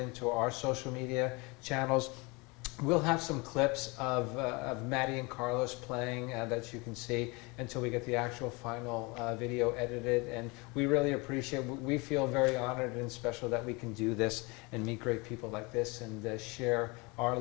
into our social media channels. We'll have some clips of Maddie and Carlos playing that you can see until we get the actual final video edited. And we really appreciate, we feel very honored and special that we can do this and meet great people like this and share our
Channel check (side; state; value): right; quieter; 27.1 dB